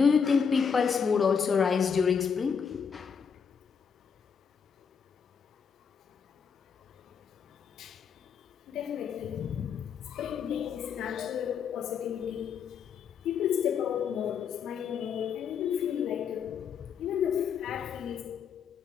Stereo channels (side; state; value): right; quieter; 6.7 dB